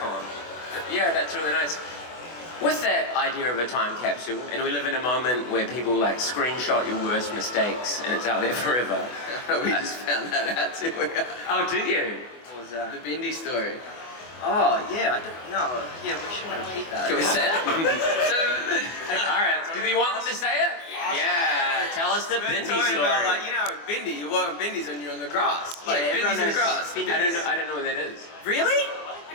on. Yeah, that's really nice. With that idea of a time capsule, and we live in a moment where people like screenshot your worst mistakes and it's out there forever. We just found that out too. Oh, did you? What was that? The Bindi story. Oh, yeah, I don't know. Yeah, we shouldn't repeat that. Can we say it? All right. Do you want them to say it? Yeah. Tell us the Bindi Talking story. about like, you know, Bindi, you walk on Bindis when you're on the grass. Like, everyone Bindi's in the knows grass. Bindis. I don't know what that is. Really?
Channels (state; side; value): late; right; 24 ms